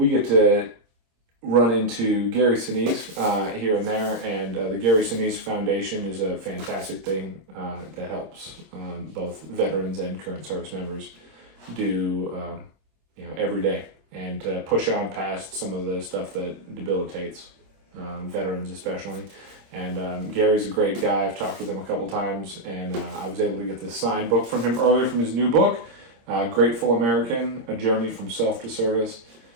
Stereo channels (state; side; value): late; left; 25 ms